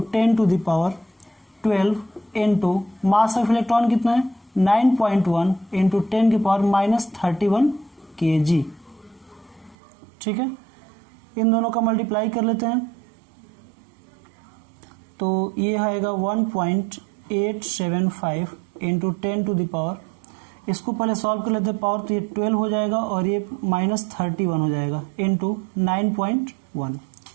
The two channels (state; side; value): drops out; left; at 9.8 s